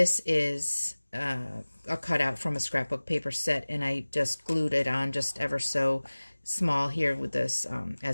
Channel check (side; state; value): both; inverted; correlation -1.00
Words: is a cutout from a scrapbook paper set, and I just glued it on just ever so small here with this